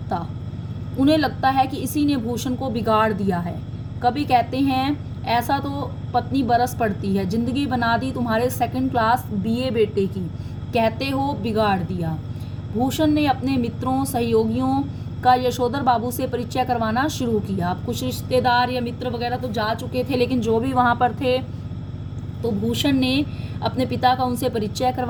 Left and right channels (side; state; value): both; identical; correlation 1.00